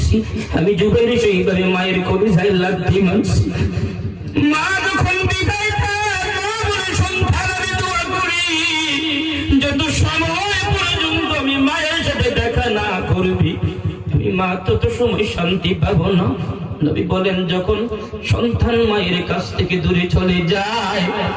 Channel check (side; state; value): both; identical; correlation 1.00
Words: আমি জুবাইরি সেইভাবে মায়ের কলিজায় লাথি মারছি। মা যখন বিদায় পায়, মা বলে, সন্তান আমি দোয়া করি যত সময় পর্যন্ত আমি মায়ের সাথে দেখা না করবি, আমি মা তত সময় শান্তি পাবো না। নবী বলেন, যখন সন্তান মায়ের কাছ থেকে দূরে চলে যায়,